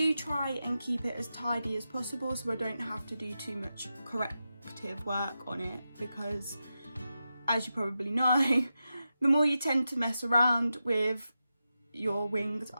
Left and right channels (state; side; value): inverted; both; correlation -0.90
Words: try and keep it as tidy as possible so I don't have to do too much corrective work on it, because as you probably know, the more you tend to mess around with your winged